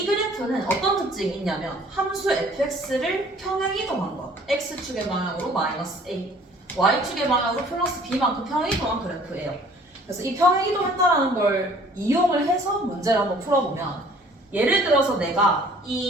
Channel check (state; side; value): normal; both; correlation 0.54